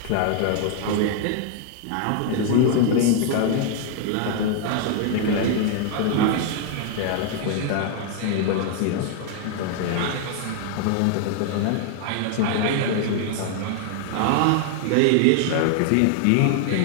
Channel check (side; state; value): both; different; correlation 0.00